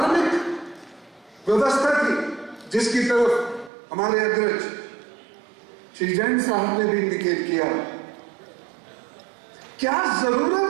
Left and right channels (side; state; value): left; drops out; at 3.7 s